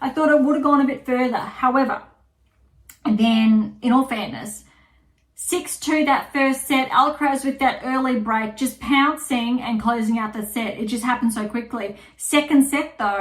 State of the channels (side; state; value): both; identical; correlation 1.00